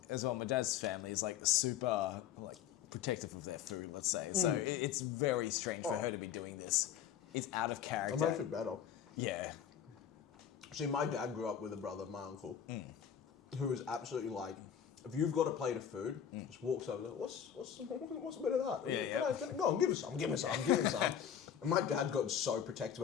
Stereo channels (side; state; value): right; quieter; 8.9 dB